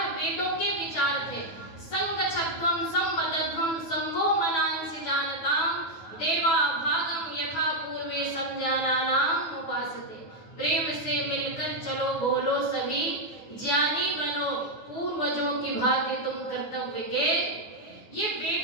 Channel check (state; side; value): late; right; 9.3 ms